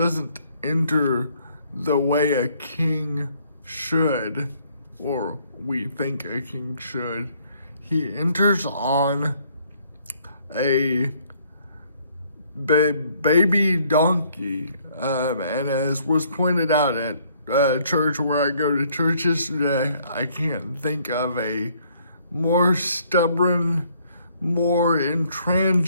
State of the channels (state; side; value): inverted; both; correlation -0.64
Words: enter the way a king should, or we think a king should. He enters on a baby donkey, and as was pointed out at church where I go to church yesterday, I can't think of a more stubborn, more